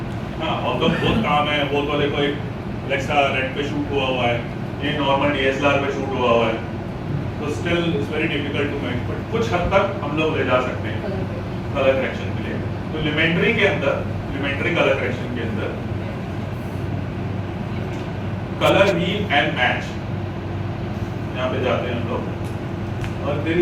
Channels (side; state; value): both; identical; correlation 1.00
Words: हाँ, और तो बहुत काम है, वो तो देखो एक Alexa रेड पे शूट हुआ है, ये नॉर्मल DSLR पे शूट हुआ है, तो still it's very difficult to match, but कुछ हद तक हम लोग ले जा सकते हैं कलर करेक्शन के लिए। तो लिमेंट्री के अंदर, लिमेंट्री कलर करेक्शन के अंदर कलर व्हील एंड मैच यहाँ पे जाते हैं हम लोग, और there